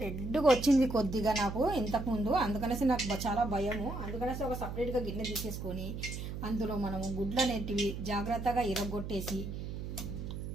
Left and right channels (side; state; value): right; noise; hum, 6 dB below the sound